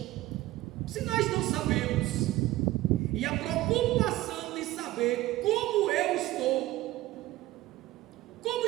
Se nós não sabemos, e a preocupação de saber como eu estou, como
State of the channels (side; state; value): left; quieter; 16.8 dB